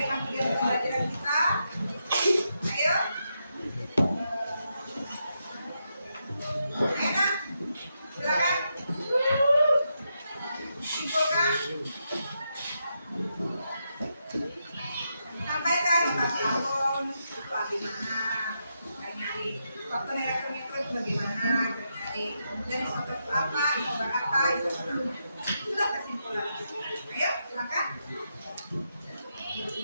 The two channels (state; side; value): inverted; both; correlation -0.83